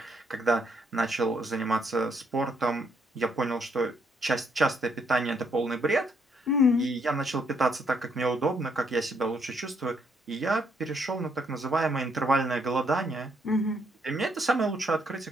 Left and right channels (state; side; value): normal; both; correlation 0.73